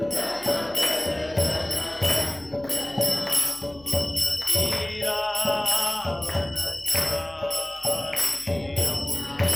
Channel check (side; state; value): left; noise; hum, 24 dB below the sound